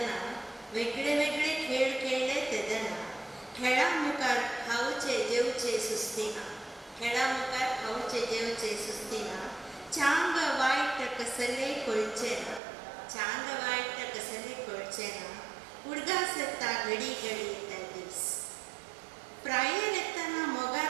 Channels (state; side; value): drops out; left; at 12.6 s